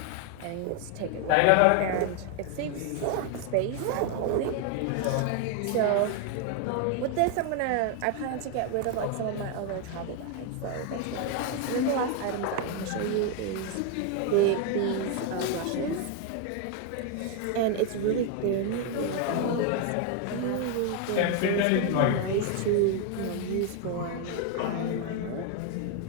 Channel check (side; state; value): both; different; correlation 0.01